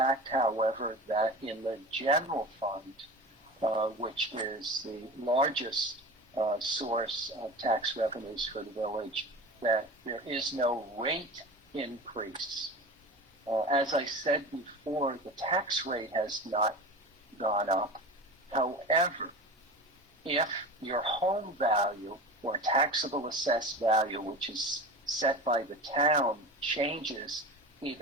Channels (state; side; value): normal; both; correlation 0.32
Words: however, that in the general fund, which is the largest source of tax revenues for the village, that there is no rate increase. As I said before, the tax rate has not gone up. However, if your home value or taxable assessed value, which is set by the town, changes